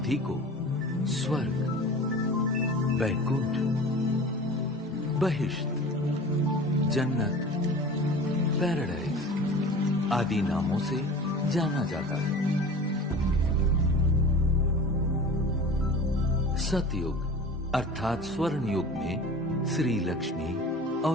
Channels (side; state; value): both; normal; correlation 0.38